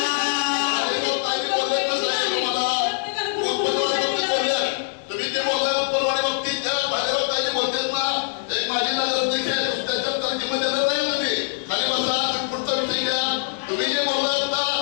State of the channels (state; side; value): silent; right; 63 dB below the other